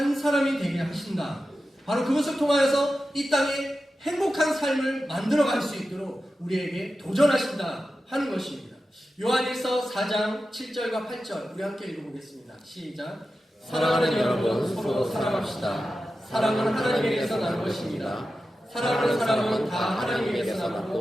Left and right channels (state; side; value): normal; both; correlation 0.92